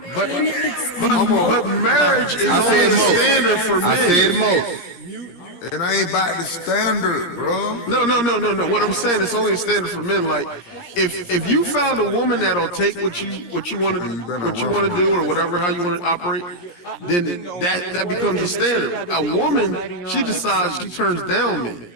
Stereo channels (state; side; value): late; right; 17 ms